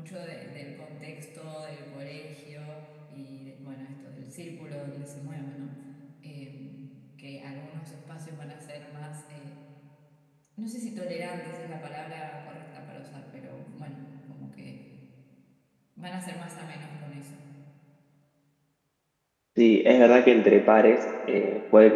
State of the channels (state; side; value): identical; both; correlation 1.00